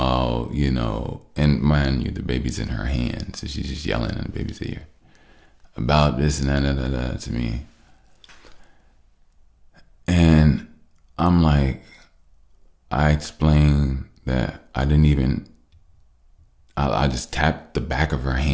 and mind you, the baby's in her hand, so she's just yelling in the baby's ear about this and that to me. And I'm like, I explained that I just tapped the back of her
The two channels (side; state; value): both; identical; correlation 1.00